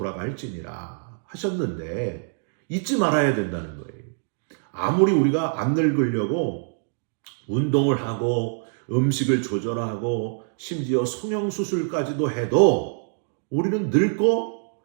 하셨는데 잊지 말아야 된다는 거예요. 아무리 우리가 안 늙으려고 운동을 하고 음식을 조절하고 심지어 성형수술까지도 해도 우리는 늙고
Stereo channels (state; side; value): silent; left; digital silence